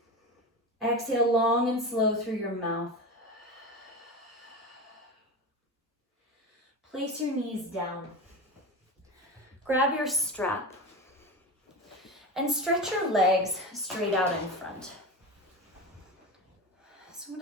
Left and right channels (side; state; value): both; normal; correlation 0.24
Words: Exhale long and slow through your mouth. Place your knees down. Grab your strap and stretch your legs straight out in front. So I'm